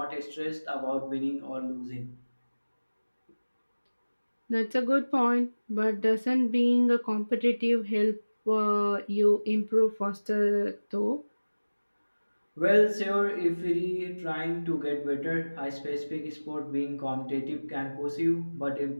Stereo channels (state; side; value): inverted; both; correlation -1.00